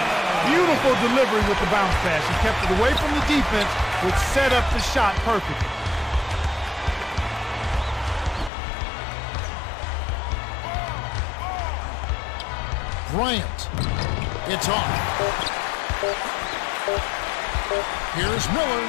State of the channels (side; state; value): right; drops out; at 8.5 s